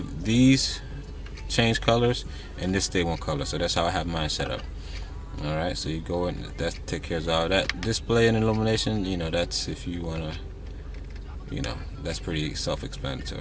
these change colors and this stay one color. So that's how I have mine set up. All right, so you go in, that take care of all that. Display and illumination, you know, that's if you wanna, you know, that's pretty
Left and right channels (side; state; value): both; identical; correlation 1.00